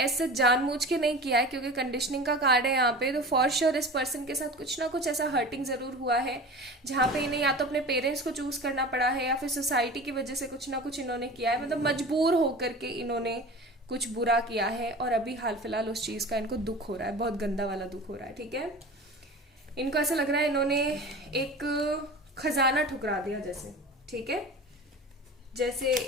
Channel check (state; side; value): normal; both; correlation 0.35